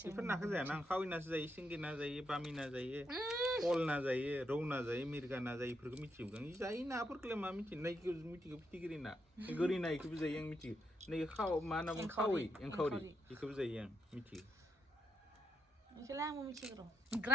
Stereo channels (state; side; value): normal; both; correlation 0.80